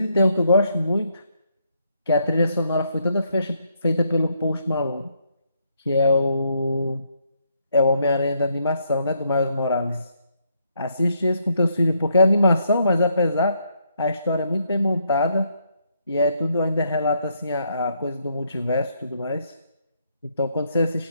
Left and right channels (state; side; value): inverted; both; correlation -0.74